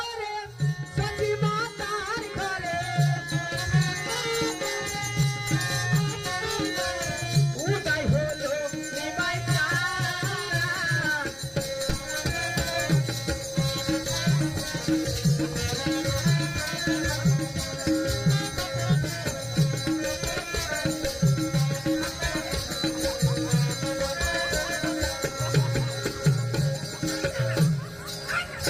সখী মাতার ঘরে উদয় হলো নিমাই চাঁদ।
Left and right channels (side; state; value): both; identical; correlation 1.00